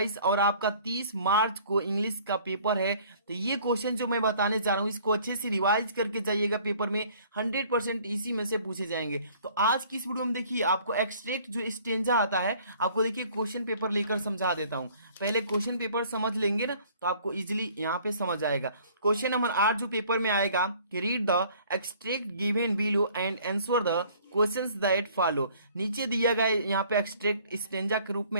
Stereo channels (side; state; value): both; inverted; correlation -0.55